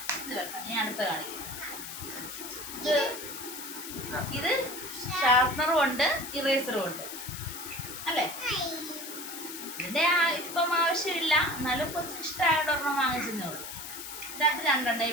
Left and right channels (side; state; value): left; noise; hiss, 9 dB below the sound